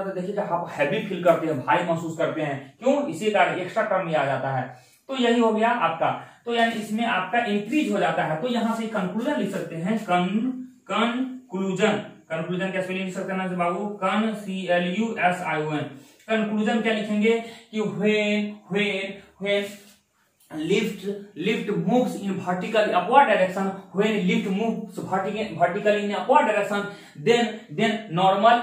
तो देखिए आप हैवी फील करते हैं, भारी महसूस करते हैं, क्यों, इसी कारण एक्स्ट्रा टर्म आ जाता है। तो यही हो गया आपका, तो यानी इसमें आपका इंक्रीज हो जाता है। तो यहां से कंक्लूजन लिख सकते हैं, कंक्लूजन क्या स्पेलिंग लिख सकते हैं ना बाबू, CLUSION। कंक्लूजन क्या लिखेंगे कि when lift moves in vertically upward direction, when lift moves vertically in upward direction, then normal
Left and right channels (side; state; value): both; identical; correlation 1.00